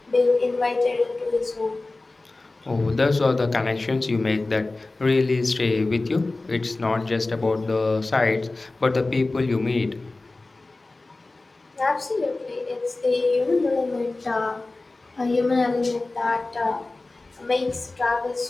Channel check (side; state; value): right; quieter; 3.2 dB